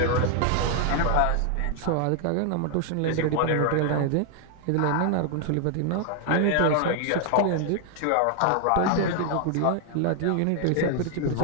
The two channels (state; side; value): different; both; correlation 0.00